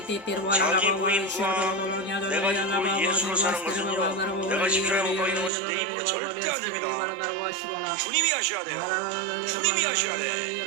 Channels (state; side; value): drops out; left; at 5.5 s